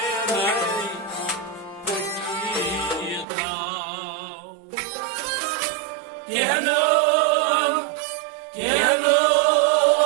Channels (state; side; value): drops out; left; at 3.2 s